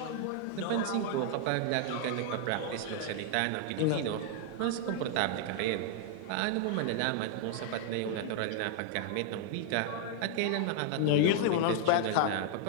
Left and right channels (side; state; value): both; different; correlation 0.00